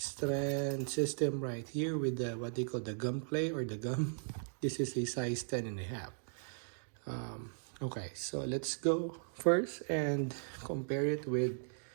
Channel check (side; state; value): left; silent; digital silence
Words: system right here with the what they call the gum clay or the gum. This is a size 10 and a half. Okay, so let's go first and compare it with